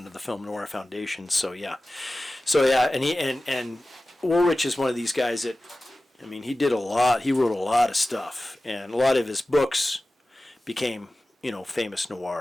of the Film Noir Foundation, and Woolrich is one of these guys that, he did a lot. He wrote a lot of stuff, and a lot of his books became, famous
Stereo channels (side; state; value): both; normal; correlation 0.96